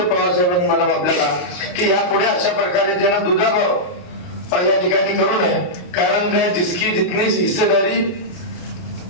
पवार साहेबांनी मॅडम आपल्याला की यापुढे अशा प्रकारे ज्यांना दुजाभाव या ठिकाणी करू नये. कारण काय जिसकी जितनी हिस्सेदारी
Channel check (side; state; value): right; late; 28 ms